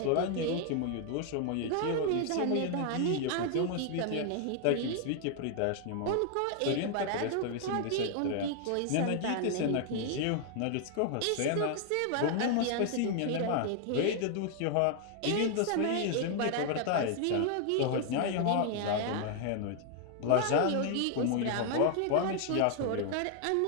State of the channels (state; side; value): different; both; correlation 0.00